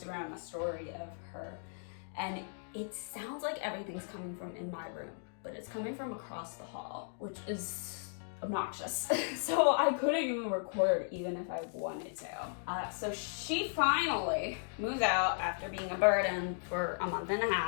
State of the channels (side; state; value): right; silent; digital silence